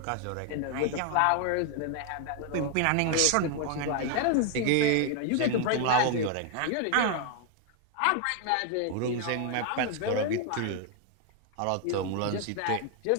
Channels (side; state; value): both; different; correlation 0.00